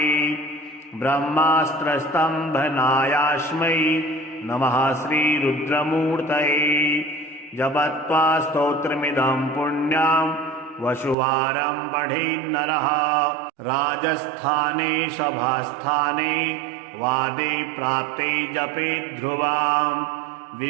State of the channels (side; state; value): left; drops out; at 11.2 s